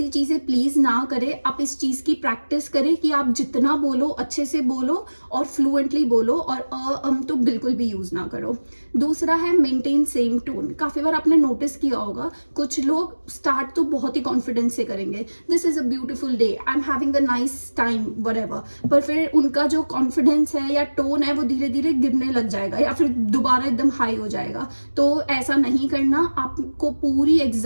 चीजें प्लीज ना करें। आप इस चीज की प्रैक्टिस करें कि आप जितना बोलो अच्छे से बोलो और फ्लुएंटली बोलो, और तो बिल्कुल भी यूज ना करो। दूसरा है मेंटेन सेम टोन। काफी बार आपने नोटिस किया होगा, कुछ लोग स्टार्ट तो बहुत ही कॉन्फिडेंस से करेंगे, this is a beautiful day, I am having a nice time, whatever, पर फिर उनका जो कॉन्फिडेंस है या टोन है वो धीरे धीरे गिरने लग जाएगा या फिर दोबारा एकदम हाई हो जाएगा। तो ऐसा नहीं करना। आपको पूरी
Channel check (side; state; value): both; inverted; correlation -1.00